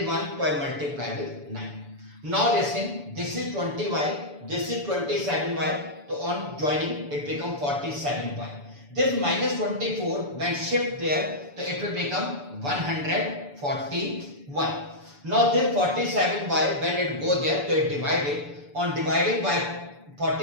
1, so I multiply with 9. Now listen, this is 20y, this is 27y, so on joining it becomes 47y. This minus 24 when shift there, so it will become 141. Now this 47y when it go there, so it divided. On dividing by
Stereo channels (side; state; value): left; late; 6.9 ms